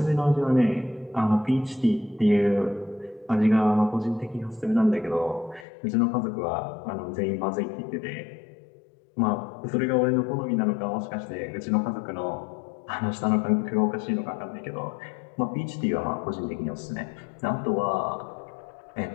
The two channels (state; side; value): drops out; right; at 5.7 s